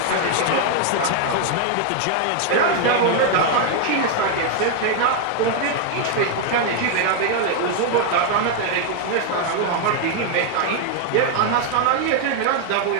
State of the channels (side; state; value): both; different; correlation 0.00